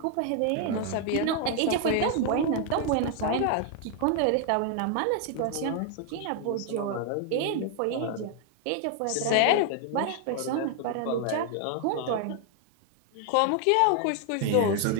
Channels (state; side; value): different; both; correlation 0.00